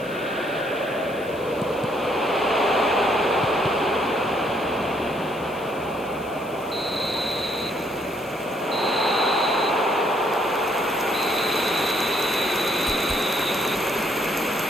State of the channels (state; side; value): noise; left; hiss, 23 dB below the sound